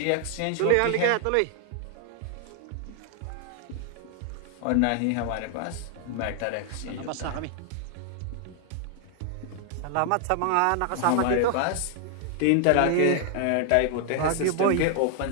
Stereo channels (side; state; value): both; different; correlation 0.00